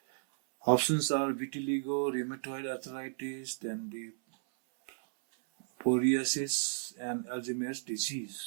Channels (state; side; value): silent; left; 55 dB below the other